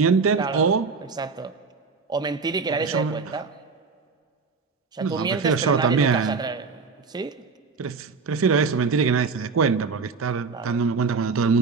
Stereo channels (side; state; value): left; quieter; 4.8 dB